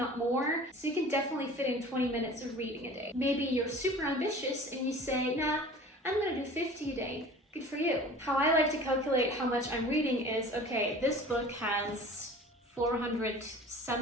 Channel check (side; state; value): both; normal; correlation 0.43